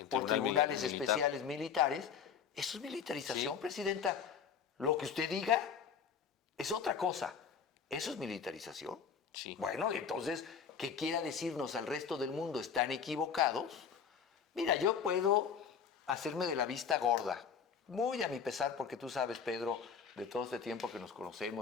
por tribunales especiales militares, eso es militarización, presidenta. Lo que usted diga es otra cosa. ¿Eso es militarización? Sí. Bueno, entonces, ¿qué quiera decirnos al resto del mundo? ¿Están equivocados? Mira, yo puedo hacerme de la vista gorda, muy a mi pesar, porque tú sabes, Pedro, de todo este tiempo que nos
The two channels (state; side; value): quieter; right; 7.0 dB